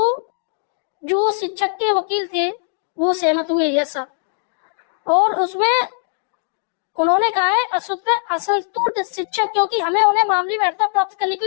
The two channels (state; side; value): silent; right; digital silence